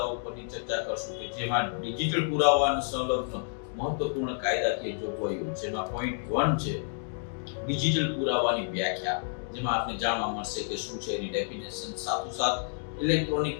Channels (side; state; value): right; silent; digital silence